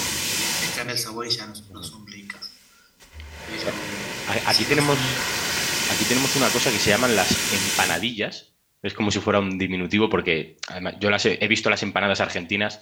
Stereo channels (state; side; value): identical; both; correlation 1.00